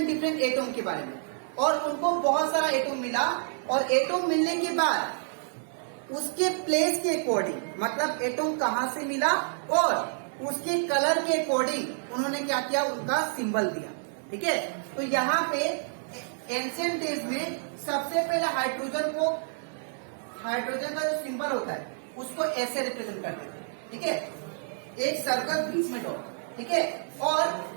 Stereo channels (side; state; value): left; silent; digital silence